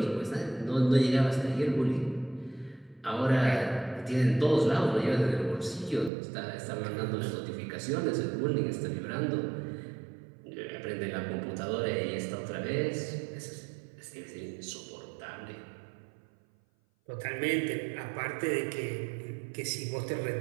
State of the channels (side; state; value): left; drops out; at 6.1 s